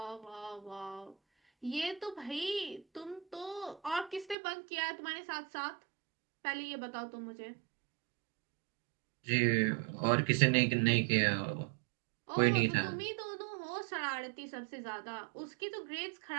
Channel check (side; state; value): left; drops out; at 4.4 s